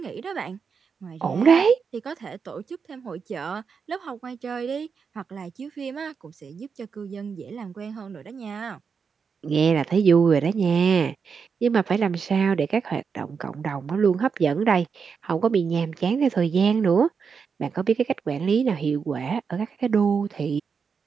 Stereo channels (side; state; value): left; quieter; 5.9 dB